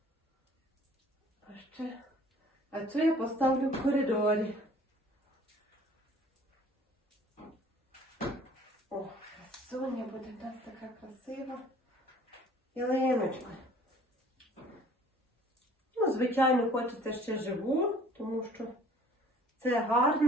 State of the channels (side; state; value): both; normal; correlation 0.52